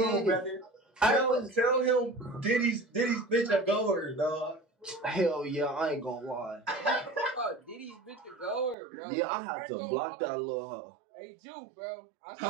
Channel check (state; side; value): drops out; left; at 8.8 s